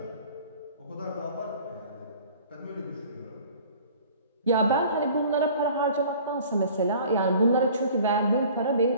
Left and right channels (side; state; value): both; inverted; correlation -0.48